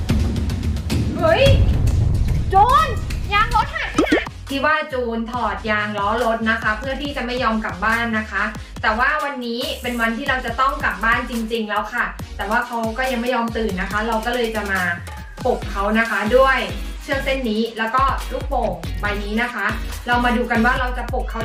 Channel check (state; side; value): identical; both; correlation 1.00